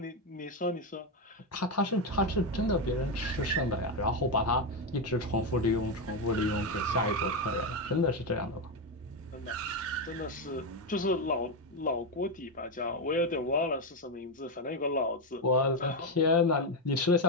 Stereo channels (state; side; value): normal; both; correlation 0.08